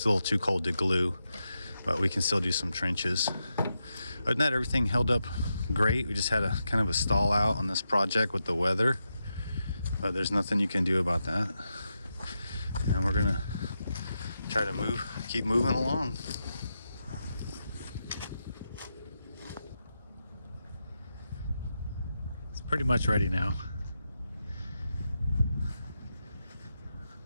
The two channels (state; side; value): inverted; both; correlation -0.87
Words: too cold to glue, but we can still do some trenches. Other than that, everything held up great. We just had a kind of a stall out on this project with the weather, but there's nothing you can do about that, and we're gonna try to keep moving along. It's pretty much ready now.